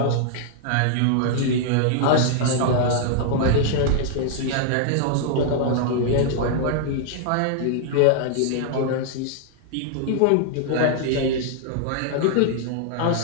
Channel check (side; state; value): both; different; correlation -0.01